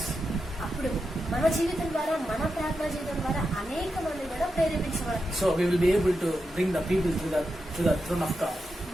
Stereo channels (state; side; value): normal; both; correlation 0.88